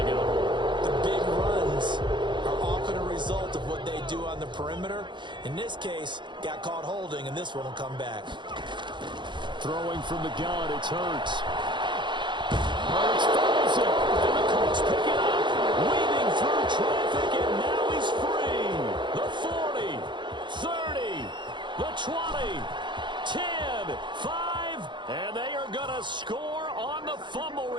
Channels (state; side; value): late; left; 0.23 ms